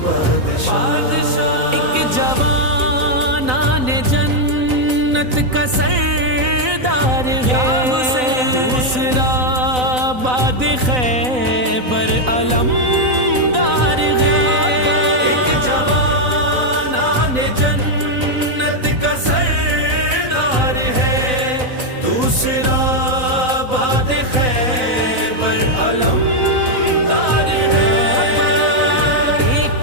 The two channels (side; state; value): left; late; 4.0 ms